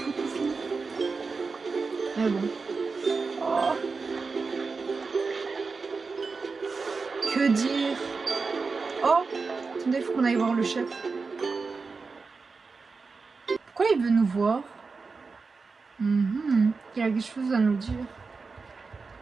finir? Mais bon. Oh. Que dire? Oh, attendez, il faut qu'on aille voir le chef. Pourquoi il veut nous voir? Il y a quelque chose à nous dire.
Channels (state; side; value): quieter; left; 4.5 dB